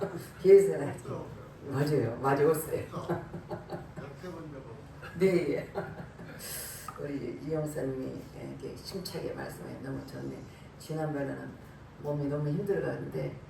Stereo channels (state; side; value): identical; both; correlation 1.00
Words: 뒤에서는 맞아요. 맞았어요. 네. 우리 이영사님이 이렇게 심차게 말씀해 너무 좋네. 지난번에는 몸이 너무 힘들었는데